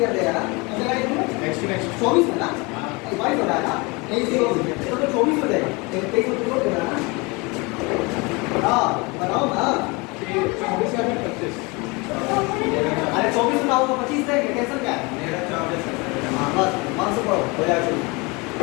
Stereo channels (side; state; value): right; quieter; 26.9 dB